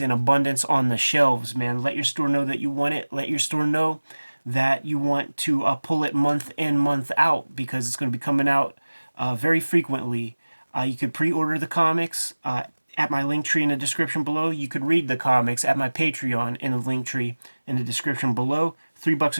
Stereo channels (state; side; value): inverted; both; correlation -1.00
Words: in abundance on the shelves, man. Let your store know that you want it. Let your store know that you want to pull it month in, month out, because it's going to be coming out very frequently. You could pre-order the comics at my link tree in the description below. You could read the comics at my Patreon in the link tree in the description below. $3